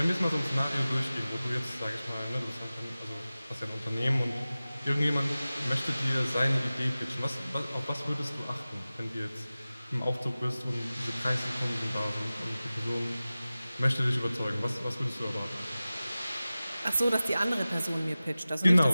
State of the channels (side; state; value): both; inverted; correlation -0.97